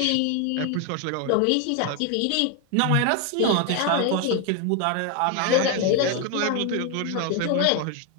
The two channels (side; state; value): both; different; correlation 0.01